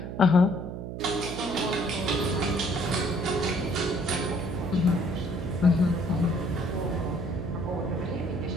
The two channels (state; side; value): noise; right; hum, 7 dB below the sound